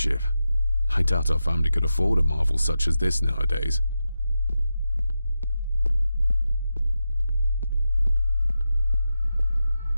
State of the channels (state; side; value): inverted; both; correlation -0.90